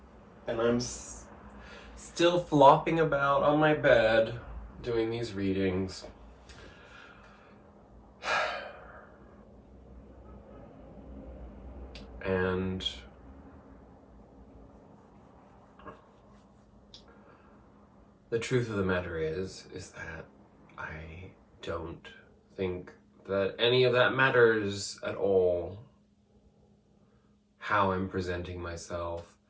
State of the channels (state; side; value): identical; both; correlation 1.00